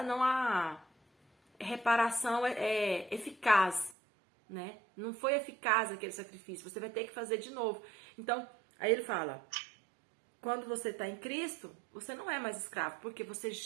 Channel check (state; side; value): drops out; left; at 4.0 s